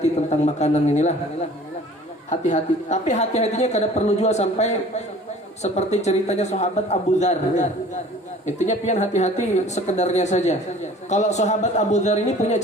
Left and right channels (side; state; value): both; normal; correlation 0.48